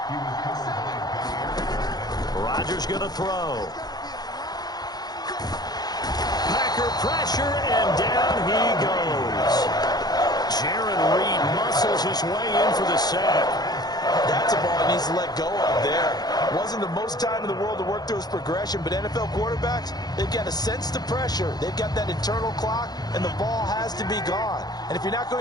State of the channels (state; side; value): late; right; 0.19 ms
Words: Rodgers going to throw. Packer pressure, and down he goes. Jaron Reed muscles his way in for the sack. That's a ball he needs to let go of there. Wasn't the most time in the world to work through his progression, but NFL quarterbacks, they've got to sense the pressure. They've got that internal clock, and the ball has to be gone. And if you're not